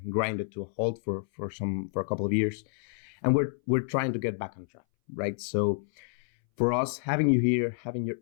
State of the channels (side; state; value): right; silent; 58 dB below the other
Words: grinded to a halt for a couple of years, and we're trying to get back on track, right? So, for us, having you here, having your